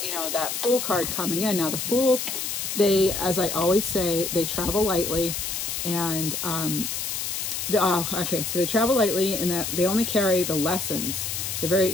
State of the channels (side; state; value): left; noise; hiss, 3 dB below the sound